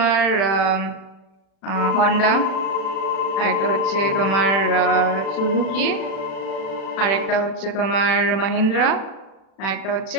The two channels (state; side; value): late; right; 36 ms